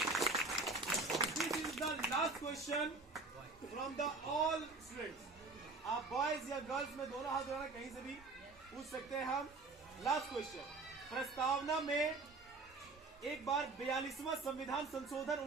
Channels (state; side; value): quieter; left; 3.6 dB